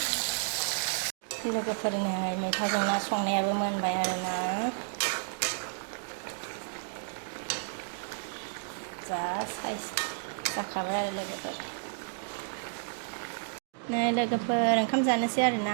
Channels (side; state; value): left; silent; digital silence